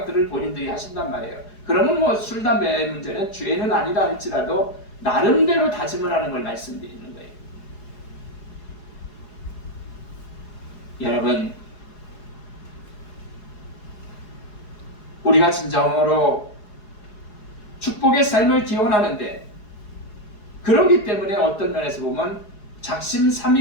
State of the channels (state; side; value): late; right; 4.8 ms